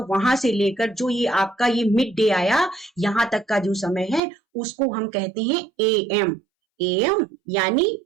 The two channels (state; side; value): drops out; left; at 4.2 s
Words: से लेकर जो ये आपका ये मिड डे आया, यहाँ तक का जो समय है, उसको हम कहते हैं AM। AM यानी